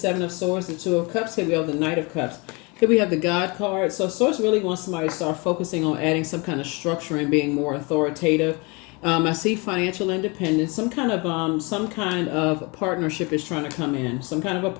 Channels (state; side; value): quieter; right; 28.6 dB